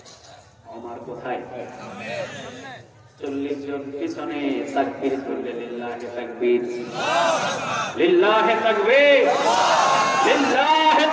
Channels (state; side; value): identical; both; correlation 1.00